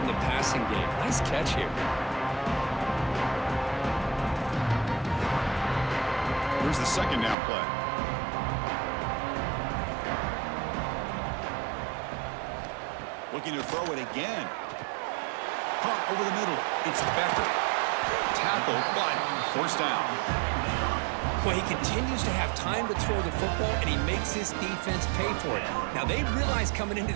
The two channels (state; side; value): drops out; left; at 7.4 s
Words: the passing game. Nice catch here. Here's the 2nd down play. Looking to throw it again. Caught over the middle. It's Becker. Tackled, but 1st down. Well, he continues to have time to throw the football, and he makes his defense pay for it. Now, they realized coming into